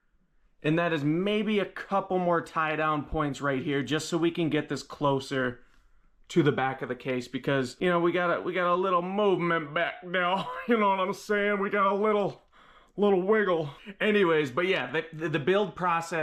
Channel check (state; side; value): identical; both; correlation 1.00